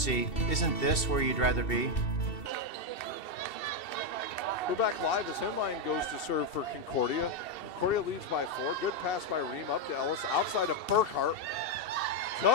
isn't this where you'd rather be? We're back live as Henline goes to serve for Concordia. Concordia leads by 4. Good pass by Ream up to Ellis. Outside of Burkhart.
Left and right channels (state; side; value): late; right; 2.7 ms